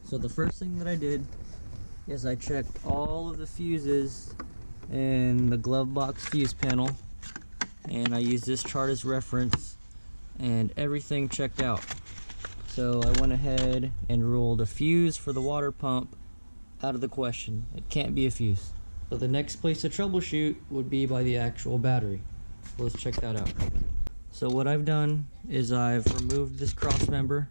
so the first thing that I did is I checked all of the fuses in the glove box fuse panel, and I used this chart as reference, and everything checked out. So I went ahead and ruled a fuse for the water pump out of the question. It can't be a fuse. So the next place to troubleshoot would be by the actual battery. So let's check that out. So what I've done is I've removed this cross member.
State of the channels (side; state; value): both; inverted; correlation -1.00